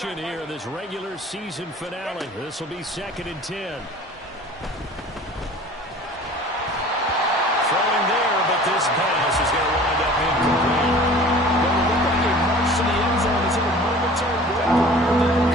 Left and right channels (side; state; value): both; normal; correlation 0.45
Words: here in this regular season finale. This will be 2nd and 10. Throwing there, but this pass is going to wind up incomplete. Well, it looked like a march to the end zone is in a momentary break prior to the